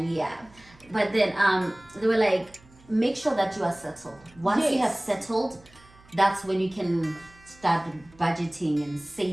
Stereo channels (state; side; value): noise; right; hum, 27 dB below the sound